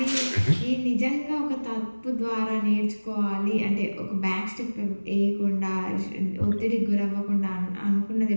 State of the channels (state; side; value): inverted; both; correlation -1.00